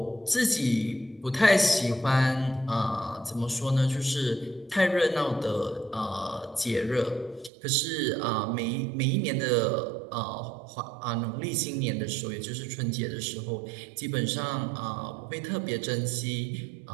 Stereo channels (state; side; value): drops out; left; at 7.5 s